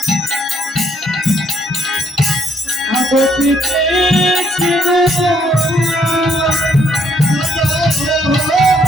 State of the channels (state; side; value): normal; both; correlation 0.69